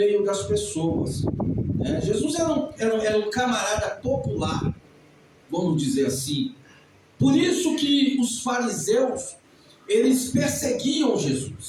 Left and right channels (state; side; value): identical; both; correlation 1.00